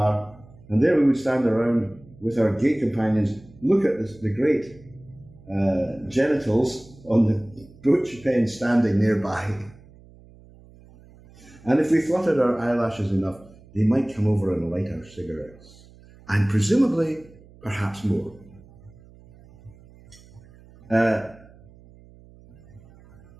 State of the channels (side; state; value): right; noise; hum, 24 dB below the sound